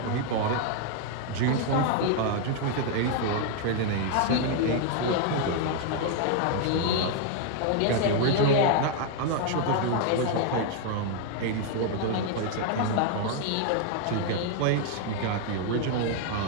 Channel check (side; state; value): both; different; correlation 0.00